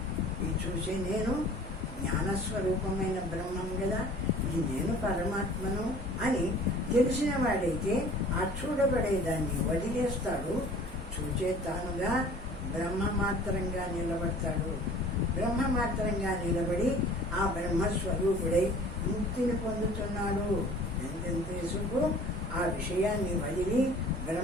ఈ చూసే నేను జ్ఞానస్వరూపమైన బ్రహ్మం కదా, ఈ నేను పరమాత్మను అని తెలిసిన వాడైతే ఆ చూడబడేదాన్ని వదిలేస్తాడు. చూచే తానుగా బ్రహ్మమాత్రంగా నిలబడతాడు. బ్రహ్మమాత్రంగా నిలబడి ఆ బ్రహ్మస్వరూపుడై ముక్తిని పొందుతున్నాడు. ఎంతెంతసేపు ఆ విషయాన్ని వదిలి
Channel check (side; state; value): both; normal; correlation 0.48